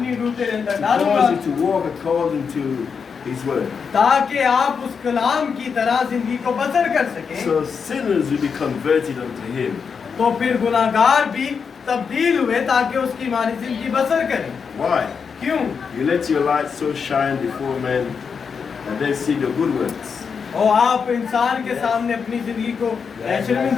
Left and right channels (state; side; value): quieter; right; 6.0 dB